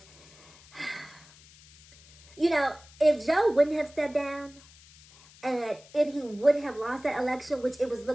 you know, if Joe wouldn't have stepped down and if he would have lost that election, which it was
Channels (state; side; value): noise; left; hiss, 24 dB below the sound